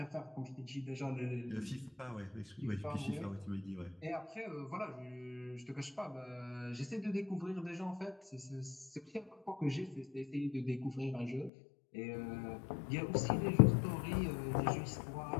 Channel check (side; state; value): right; drops out; at 11.5 s